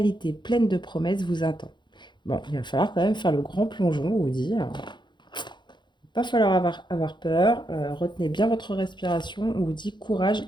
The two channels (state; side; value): late; right; 0.22 ms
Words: pleine de promesses vous attend. Bon, il va falloir quand même faire le grand plongeon, on vous dit. Il va pas falloir avoir peur. Retenez bien votre respiration. On vous dit courage